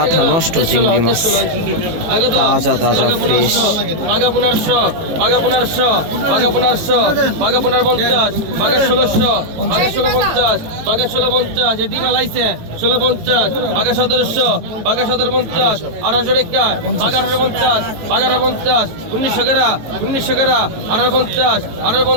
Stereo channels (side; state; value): left; late; 18 ms